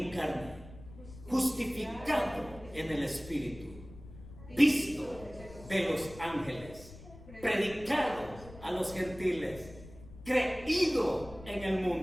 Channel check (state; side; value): noise; left; rumble, 17 dB below the sound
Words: carne, justificado en el Espíritu, visto de los ángeles, predicado a los gentiles, creído en el